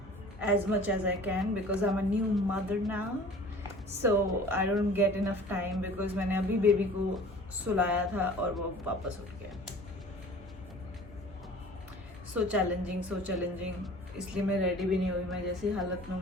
as much as I can because I'm a new mother now, so I don't get enough time because मैंने अभी baby को सुलाया था और वो वापस उठ गया। सो चैलेंजिंग इसलिए मैं रेडी भी नहीं हुई। मैं जैसी हालत में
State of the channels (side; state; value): both; normal; correlation 0.45